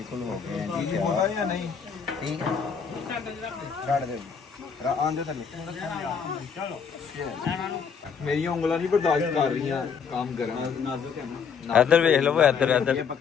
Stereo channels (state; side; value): quieter; right; 6.4 dB